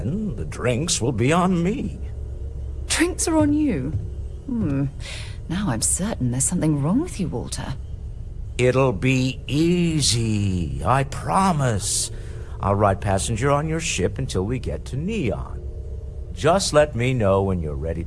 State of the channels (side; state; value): both; identical; correlation 1.00